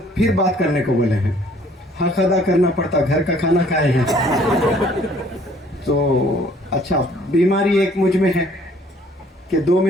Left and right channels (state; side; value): normal; both; correlation 0.58